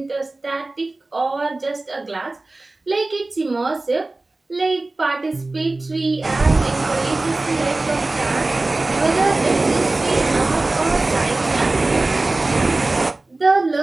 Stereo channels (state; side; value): quieter; left; 3.1 dB